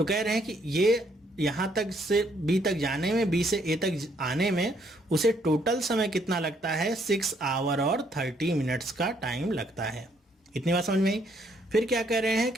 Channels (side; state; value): both; normal; correlation 0.69